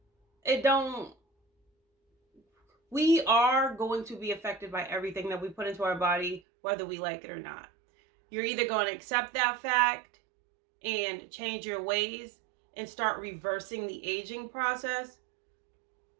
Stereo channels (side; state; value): left; drops out; at 6.4 s